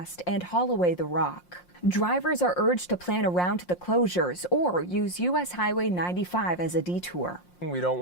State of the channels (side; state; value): right; late; 5.6 ms